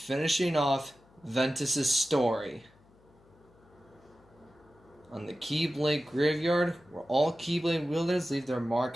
off Ventus' story. On the Keyblade Graveyard, where all Keyblade wielders leave their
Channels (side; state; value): left; noise; hum, 29 dB below the sound